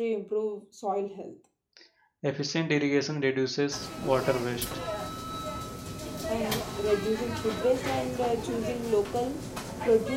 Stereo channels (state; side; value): identical; both; correlation 1.00